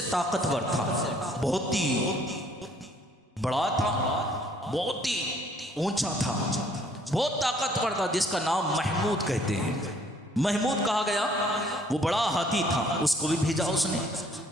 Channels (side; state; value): both; normal; correlation 0.61